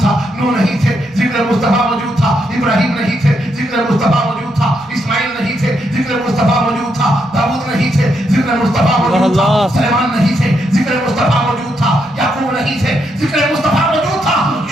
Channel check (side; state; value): both; normal; correlation 0.79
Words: نوح نہیں تھے، ذکر مصطفیٰ موجود تھا، ابراہیم نہیں تھے، ذکر مصطفیٰ موجود تھا، اسماعیل نہیں تھے، ذکر مصطفیٰ موجود تھا، داؤد نہیں تھے، ذکر مصطفیٰ موجود تھا، سلیمان نہیں تھے، ذکر مصطفیٰ موجود تھا، یعقوب نہیں تھے، ذکر مصطفیٰ موجود تھا،